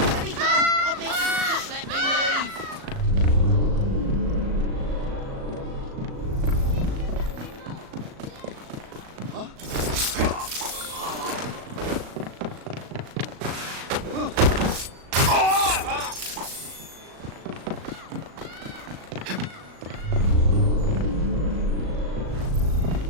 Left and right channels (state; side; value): late; left; 37 ms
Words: me go! I beg you, just let me leave!